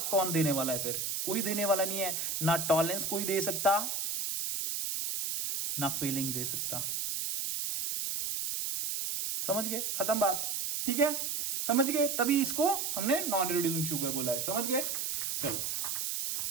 कौन देने वाला है फिर, कोई देने वाला नहीं है, ना टॉलरेंस कोई दे सकता, ना फेलिंग दे सकता। समझ गए, खत्म बात, ठीक है, समझ गए। तभी इसको हमने नॉन रिड्यूसिंग शुगर बोला है, समझ गए। चलो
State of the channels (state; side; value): noise; right; hiss, 1 dB below the sound